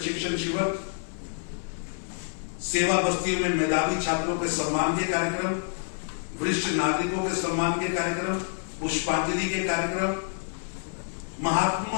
शिविर, सेवा बस्तियों में मेधावी छात्रों के सम्मान के कार्यक्रम, वरिष्ठ नागरिकों के सम्मान के कार्यक्रम, पुष्पांजलि के कार्यक्रम,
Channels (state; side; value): silent; right; 58 dB below the other